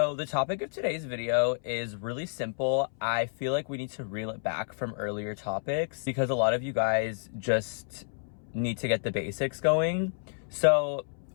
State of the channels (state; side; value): silent; right; 58 dB below the other